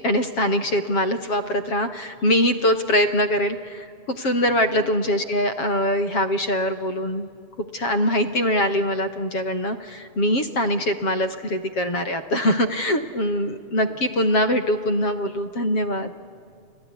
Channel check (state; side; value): late; right; 7.3 ms